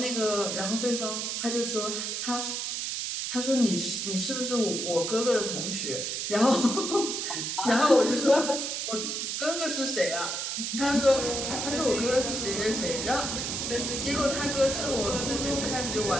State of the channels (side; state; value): right; noise; hiss, 2 dB below the sound